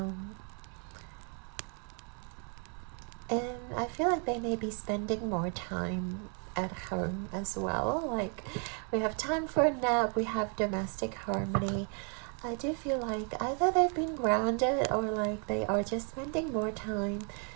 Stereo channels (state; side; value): quieter; left; 39.9 dB